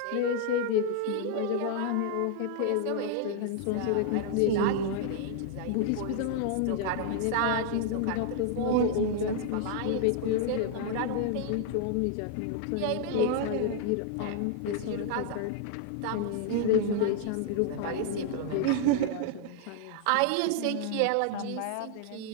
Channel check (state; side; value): different; both; correlation 0.00